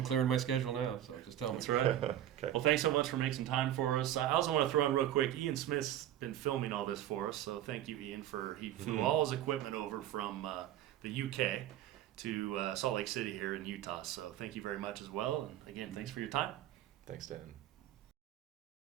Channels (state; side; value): quieter; left; 12.1 dB